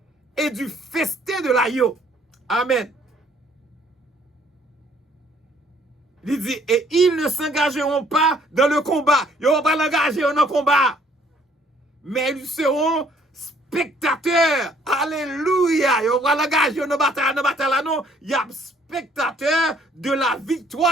et du festin de l'agneau. Amen. Il dit, et ils ne s'engageront pas dans le combat. Ils ne vont pas l'engager dans le combat. Mais ils seront spectateurs. Alléluia. Ils vont pas l'engager dans la bataille. Non, il y a spectateurs de la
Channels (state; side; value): normal; both; correlation 0.62